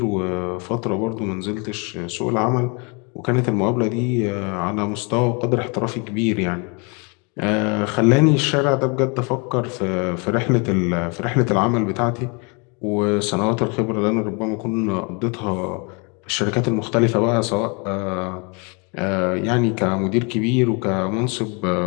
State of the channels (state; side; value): quieter; right; 32.4 dB